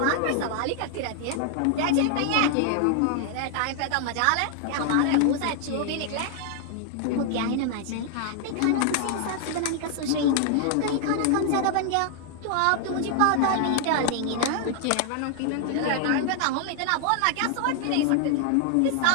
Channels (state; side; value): different; both; correlation 0.00